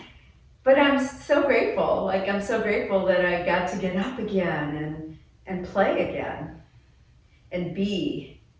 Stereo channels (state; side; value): identical; both; correlation 1.00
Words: But I'm so grateful. Like, I'm so grateful that I got to get up again and play again and be,